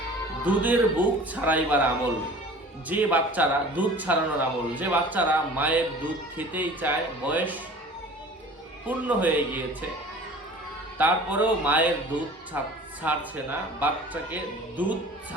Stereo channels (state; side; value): normal; both; correlation 0.44